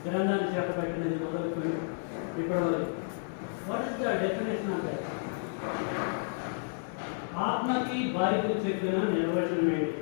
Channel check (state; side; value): silent; right; 57 dB below the other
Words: గ్రంథాన్ని చేపట్టినది మొదలుకొని ఇప్పటివరకు. What is the definition of that? ఆత్మకి బాధ్యత చెప్పిన నిర్వచనం ఏంటి?